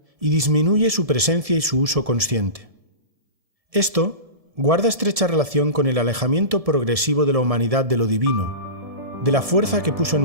y disminuye su presencia y su uso consciente. Esto guarda estrecha relación con el alejamiento progresivo de la humanidad de lo divino, de la fuerza que puso en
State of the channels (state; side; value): late; left; 1.7 ms